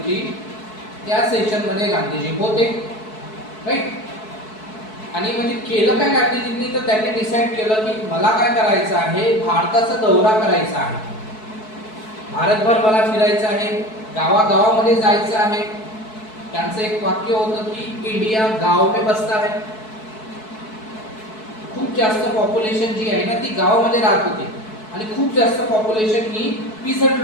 त्या सेशन मध्ये गांधीजी होते राईट. आणि म्हणजे केलं काय गांधीजींनी तर त्यांनी डिसाईड केलं की मला काय करायचं आहे भारताचा दौरा करायचा आहे. भारतभर मला फिरायचं आहे गावागावामध्ये जायचं आहे. त्यांचं एक वाक्य होतं की इंडिया गाव में बसता है. खूप जास्त पॉप्युलेशन जी आहे ना ती गावामध्ये राहत होती आणि खूप जास्त पॉप्युलेशन ही पीसंट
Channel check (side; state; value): right; late; 4.6 ms